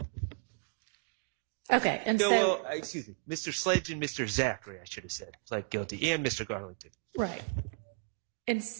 Okay, and no, so well, Mr. Sledge and Mr. Zachary, I should have said, pled guilty, and Mr. Garlington. right,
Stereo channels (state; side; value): quieter; left; 32.2 dB